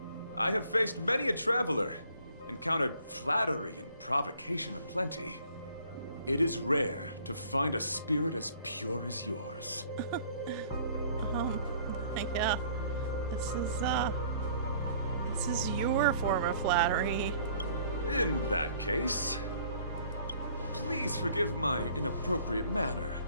I have faced many a traveler, encountered flattery and provocation aplenty. It is rare to find a spirit as pure as yours. Yeah. This is your form of flattery. In that case, please forgive my inappropriate manner.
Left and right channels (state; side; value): inverted; both; correlation -0.56